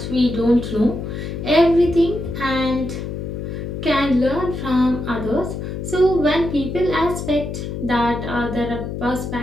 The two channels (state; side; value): noise; left; hum, 6 dB below the sound